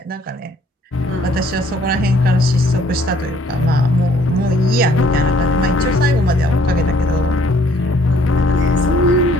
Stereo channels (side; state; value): both; normal; correlation 0.61